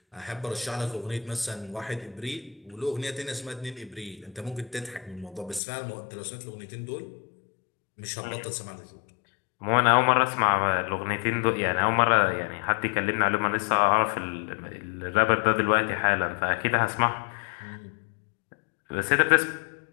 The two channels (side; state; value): right; drops out; at 5.6 s